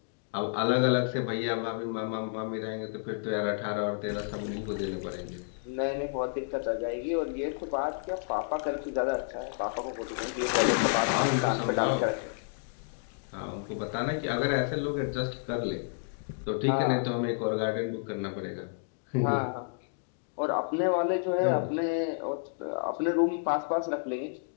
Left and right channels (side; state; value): right; silent; digital silence